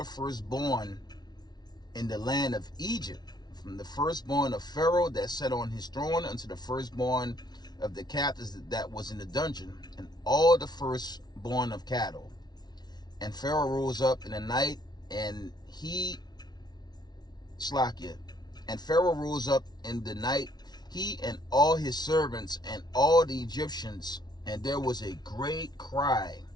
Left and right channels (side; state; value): right; late; 0.20 ms